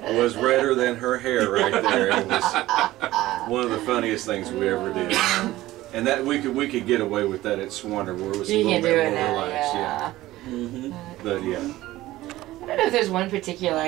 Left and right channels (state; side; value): quieter; left; 16.5 dB